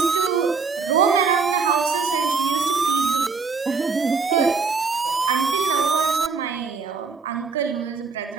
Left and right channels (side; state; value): left; quieter; 4.9 dB